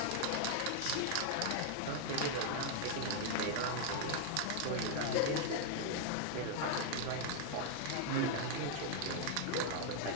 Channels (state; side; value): different; both; correlation 0.00